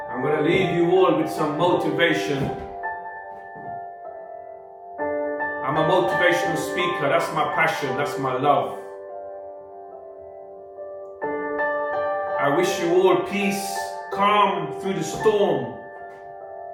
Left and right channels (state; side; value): identical; both; correlation 1.00